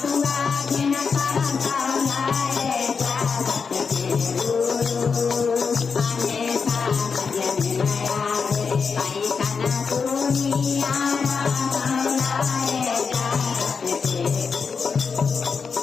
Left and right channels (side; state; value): right; quieter; 5.5 dB